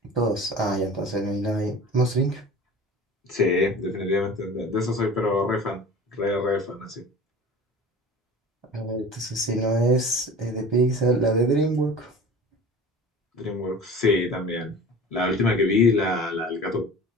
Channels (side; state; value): both; normal; correlation 0.39